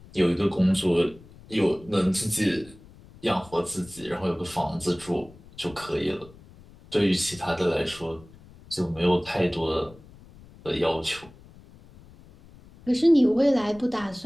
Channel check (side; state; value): left; noise; rumble, 22 dB below the sound